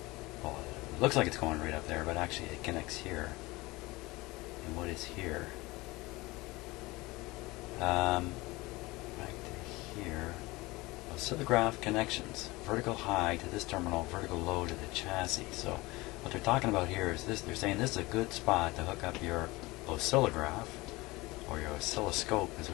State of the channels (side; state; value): right; quieter; 21.7 dB